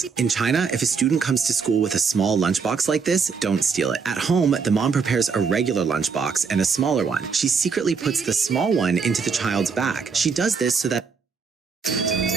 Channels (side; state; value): left; quieter; 5.5 dB